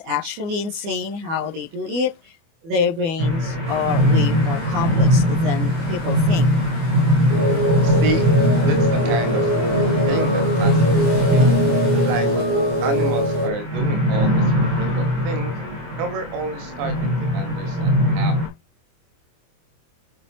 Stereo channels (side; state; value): left; late; 25 ms